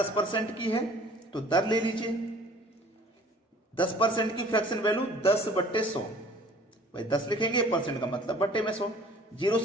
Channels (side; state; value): both; normal; correlation 0.51